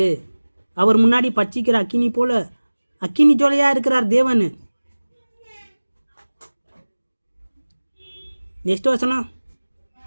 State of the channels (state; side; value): inverted; both; correlation -1.00